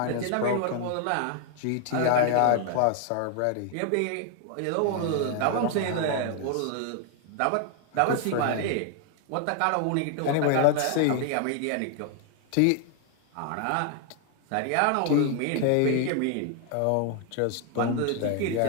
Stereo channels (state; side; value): different; both; correlation 0.00